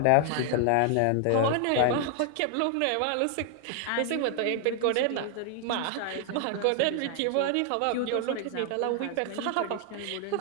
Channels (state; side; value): different; both; correlation 0.00